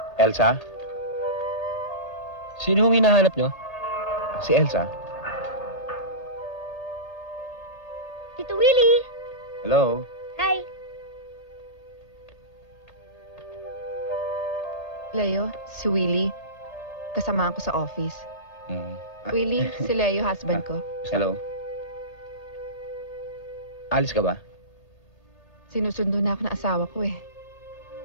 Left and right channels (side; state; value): right; late; 3.3 ms